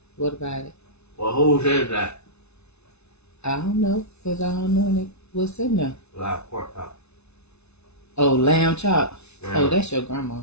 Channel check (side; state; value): right; late; 0.81 ms